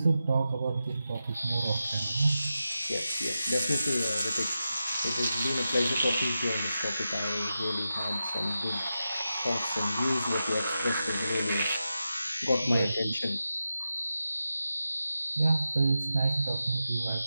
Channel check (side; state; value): both; inverted; correlation -0.90